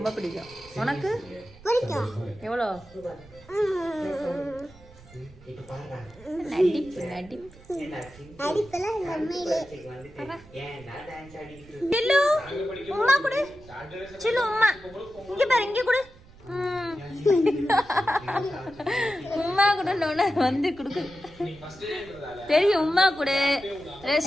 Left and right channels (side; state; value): right; noise; rumble, 22 dB below the sound